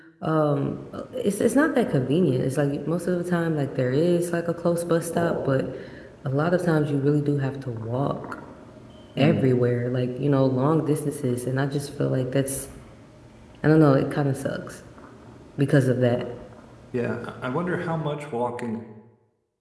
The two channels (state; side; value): identical; both; correlation 1.00